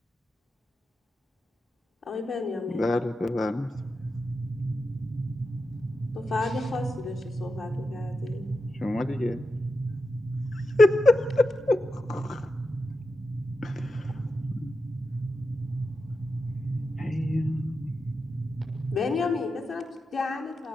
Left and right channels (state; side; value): normal; both; correlation 0.89